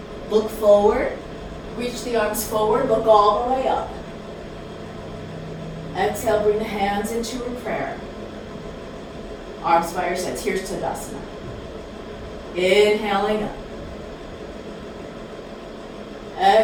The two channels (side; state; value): both; identical; correlation 1.00